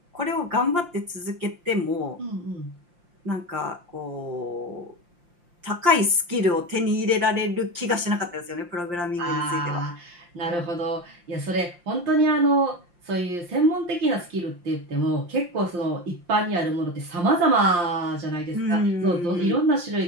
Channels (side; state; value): left; late; 5.7 ms